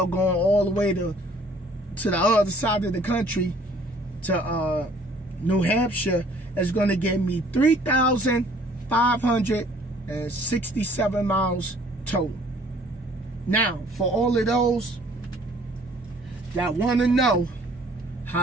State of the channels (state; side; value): normal; both; correlation 0.57